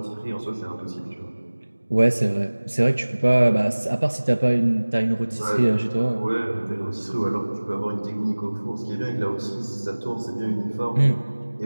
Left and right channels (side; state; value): both; inverted; correlation -1.00